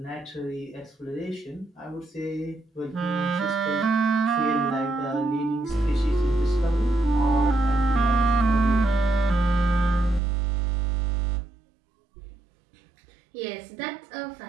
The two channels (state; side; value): drops out; left; at 10.2 s